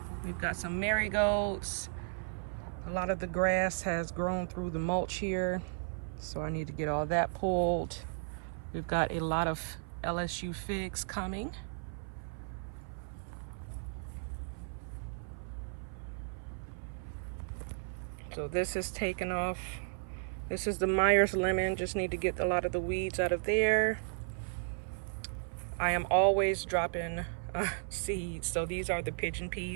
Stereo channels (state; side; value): silent; left; 55 dB below the other